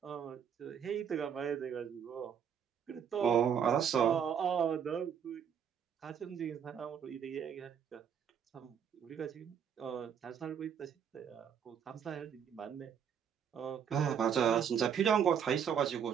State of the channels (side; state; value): left; quieter; 8.0 dB